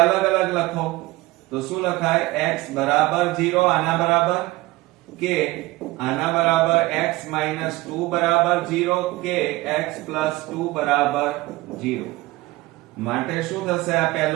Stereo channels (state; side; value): quieter; left; 19.8 dB